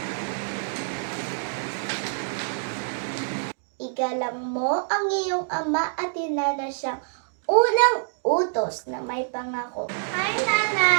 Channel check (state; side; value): silent; left; digital silence